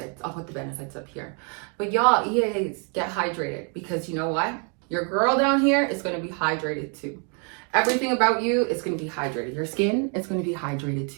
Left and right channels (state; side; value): quieter; left; 39.0 dB